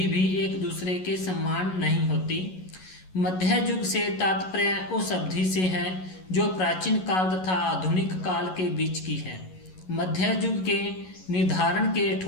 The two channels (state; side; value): late; right; 11 ms